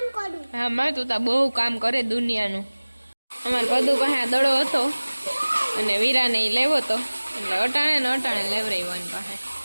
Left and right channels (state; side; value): inverted; both; correlation -1.00